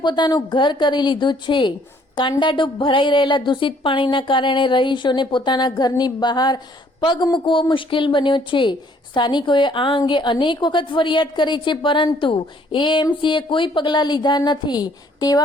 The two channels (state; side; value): normal; both; correlation 0.62